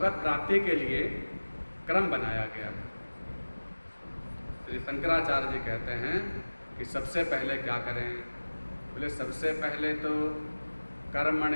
प्राप्ति के लिए क्रम बनाया गया है। श्री शंकराचार्य जी कहते हैं कि सबसे पहले क्या करें? बोले सबसे पहले तो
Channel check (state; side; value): inverted; both; correlation -1.00